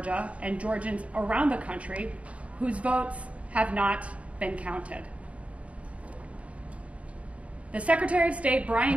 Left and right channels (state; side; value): late; left; 0.065 ms